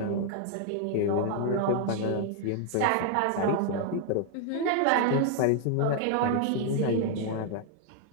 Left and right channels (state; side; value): different; both; correlation 0.00